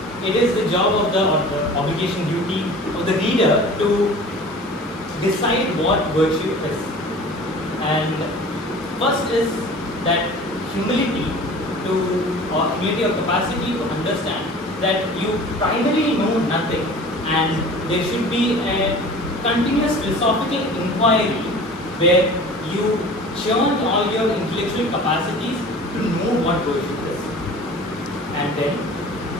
it is the job of the, or the obligation duty of the reader to decide what virtue is. And first is that humility or humility of capacity to understand that you primarily know nothing, and there should be a continuous philosophical inquiry where you churn all your intellectual capacities to know what virtue is. And then,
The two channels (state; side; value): normal; both; correlation 0.42